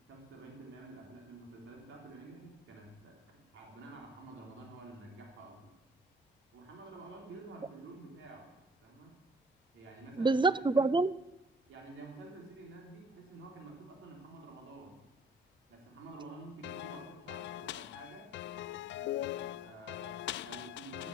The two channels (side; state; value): both; normal; correlation 0.57